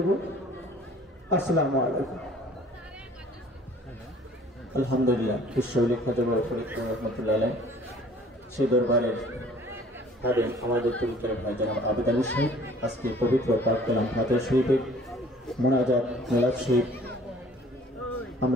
আসসালামু আলাইকুম। আলহামদুলিল্লাহ, বিশ্ববিলেখ রহমতুল্লাহ আলাইহি সেই দরবারের খাদেম আমাদের পবিত্র ভাই জনাব আবেদ আলী সাহেব আজকে পবিত্র পাক কালাম ফাতিহা শরীফের মোনাজাত মিলাদ শরীফ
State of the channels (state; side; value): normal; both; correlation 0.53